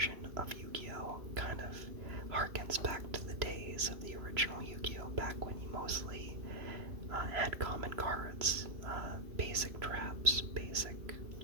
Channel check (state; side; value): late; left; 3.0 ms